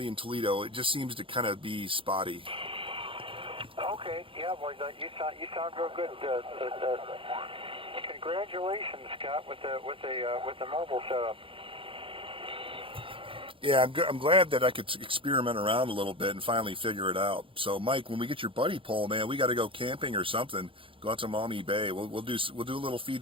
in Toledo, it just seems to kind of be spotty. Okay, yeah, boy, you sound real good. Congratulations, Scott, with the mobile setup. Yeah, I'm glad that I could experiment around a little bit and finally figure it out. So, Mike, when we get your buddy pole, man, we got to go camping or something. Go out to Maumee Bay. We'll do a little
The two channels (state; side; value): late; left; 0.25 ms